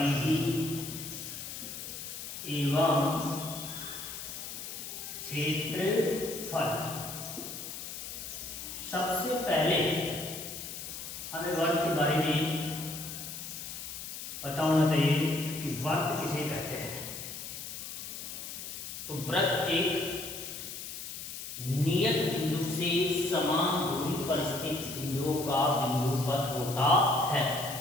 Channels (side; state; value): left; noise; hiss, 8 dB below the sound